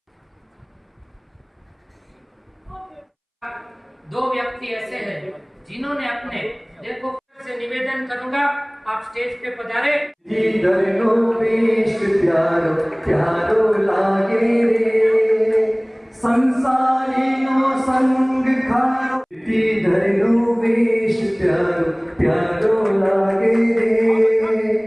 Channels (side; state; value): both; identical; correlation 1.00